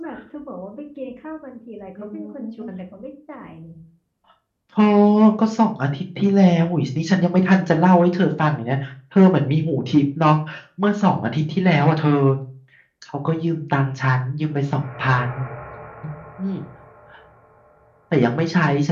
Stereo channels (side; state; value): both; identical; correlation 1.00